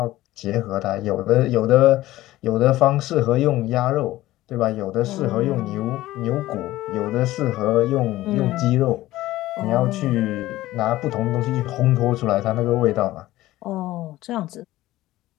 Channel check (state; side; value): quieter; right; 16.3 dB